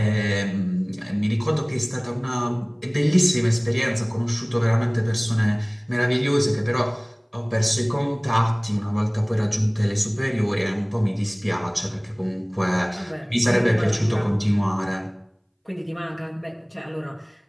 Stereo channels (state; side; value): identical; both; correlation 1.00